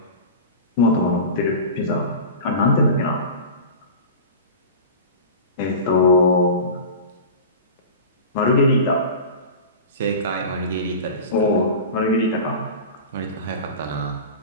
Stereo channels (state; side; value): inverted; both; correlation -0.31